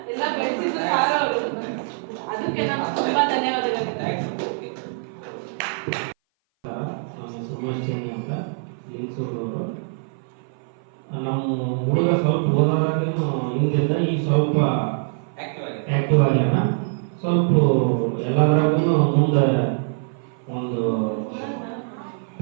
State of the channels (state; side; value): silent; left; 57 dB below the other